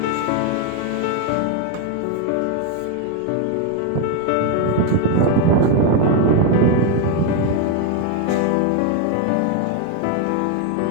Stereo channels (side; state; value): both; different; correlation 0.02